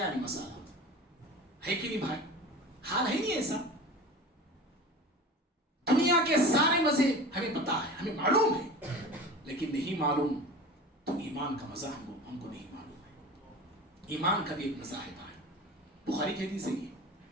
نہیں مسالہ. ہے کہ نہیں بھائی؟ حال ہے نہیں ایسا؟ دنیا کے سارے مزے ہمیں پتا ہے، ہمیں معلوم ہے، لیکن نہیں معلوم تو ایمان کا مزہ ہم کو نہیں معلوم ہے. ایمان کا بھی ایک مزہ ہے بھائی. بخاری کی حدیث ہے یہ،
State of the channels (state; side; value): normal; both; correlation 0.35